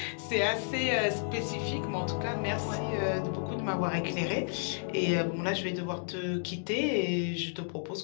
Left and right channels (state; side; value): silent; right; digital silence